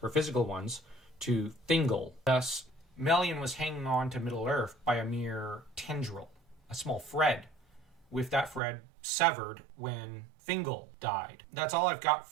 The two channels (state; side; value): drops out; left; at 8.6 s